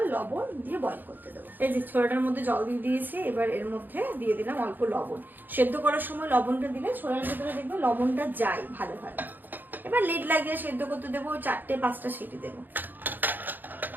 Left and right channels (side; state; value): left; late; 0.089 ms